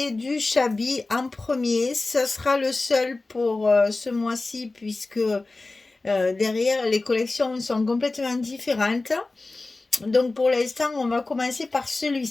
du Chabi en premier. Ce sera le seul pour ce mois-ci puisque derrière les collections sont complètement différentes. Donc pour l'instant, on va commencer par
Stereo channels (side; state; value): right; quieter; 3.3 dB